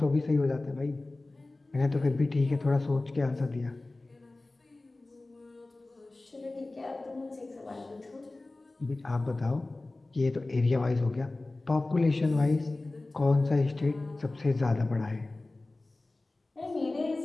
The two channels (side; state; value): right; quieter; 3.0 dB